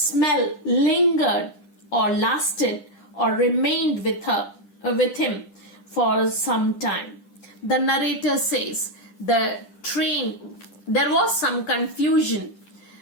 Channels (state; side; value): late; right; 10 ms